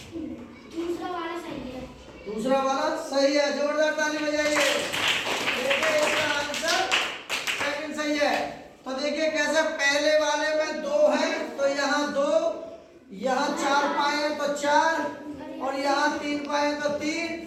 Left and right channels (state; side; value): identical; both; correlation 1.00